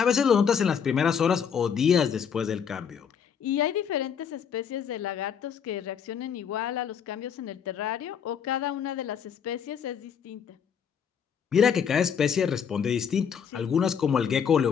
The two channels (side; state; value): right; quieter; 7.4 dB